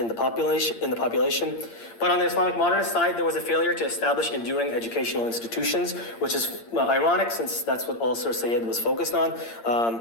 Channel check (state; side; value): late; right; 8.7 ms